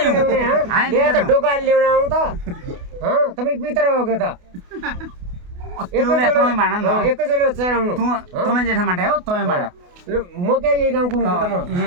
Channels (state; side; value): late; left; 28 ms